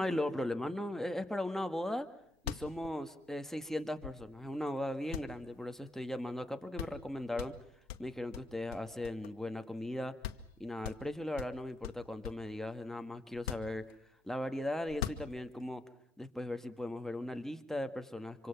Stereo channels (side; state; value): both; normal; correlation 0.82